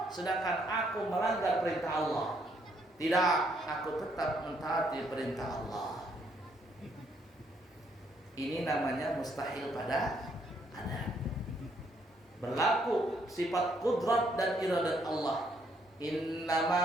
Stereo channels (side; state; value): both; normal; correlation 0.71